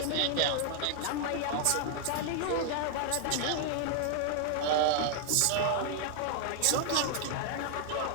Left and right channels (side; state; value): both; different; correlation 0.00